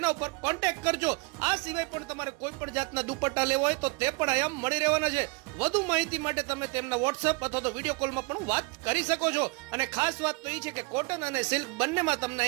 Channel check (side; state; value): left; quieter; 29.1 dB